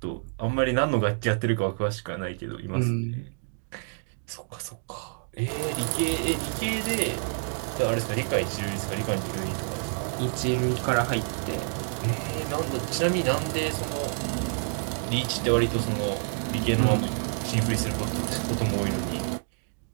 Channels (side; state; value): left; silent; 59 dB below the other